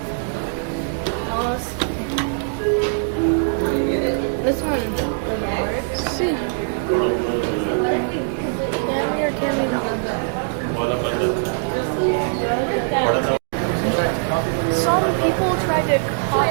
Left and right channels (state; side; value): silent; left; digital silence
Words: This one doesn't work. Let's see. Can we or can we not? Some people tried to